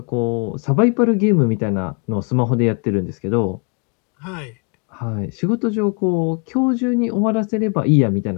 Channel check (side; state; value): right; quieter; 36.3 dB